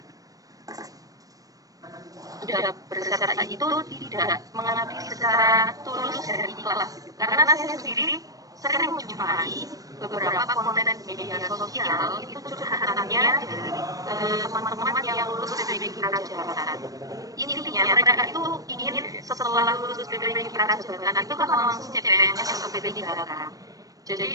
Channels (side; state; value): left; late; 0.17 ms